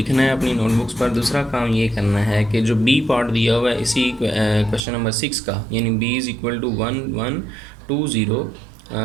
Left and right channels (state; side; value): drops out; left; at 4.9 s